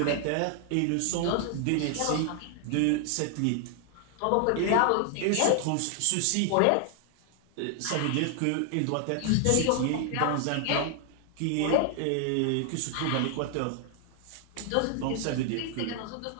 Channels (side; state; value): both; different; correlation 0.00